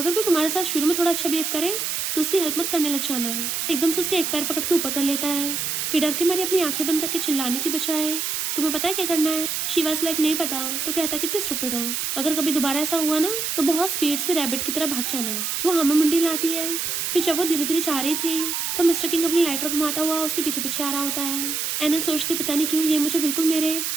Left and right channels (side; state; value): right; noise; hiss, 1 dB below the sound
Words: कोई तुम्हारे साथ शुरू में थोड़ा अच्छा बिहेव करे तो उसकी हेल्प मत करने लग जाना। एकदम से उसके एक पैर पकड़ के ऊपर कर लेता है कि डर के मारे अपनी आंखें बंद करके चिल्लाने की बजाय तुम्हें पता है क्या करना है। शी वाज लाइक नहीं पता। तो कहता कितने स्टूपिड हो, अगर कभी दोबारा ऐसा हुआ ना तो बहुत स्पीड से रैबिट की तरह भाग जाना। वो हमें मुंडी लाती है। फिर जब वो धीरे धीरे जा रही थी तो मिस्टर किंग अपनी लाइटर घुमाता हुआ उसके पीछे पीछे आ रहा होता है। एनन सोचती पता नहीं क्यों ये मुझे बिल्कुल मेरे